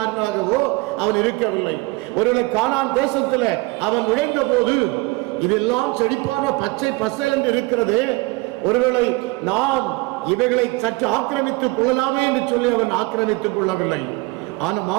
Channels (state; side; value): quieter; left; 23.6 dB